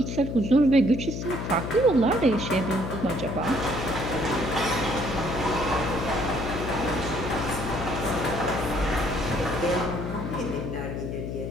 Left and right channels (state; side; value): noise; left; hum, 5 dB below the sound